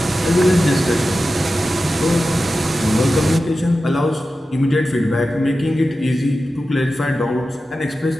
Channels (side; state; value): both; normal; correlation 0.93